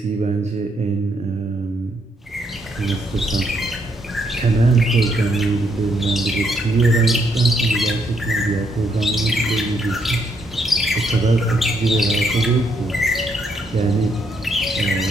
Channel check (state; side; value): normal; both; correlation 0.75